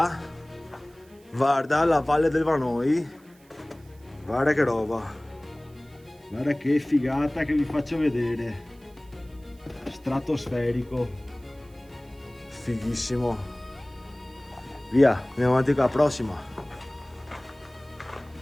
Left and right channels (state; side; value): noise; right; hiss, 30 dB below the sound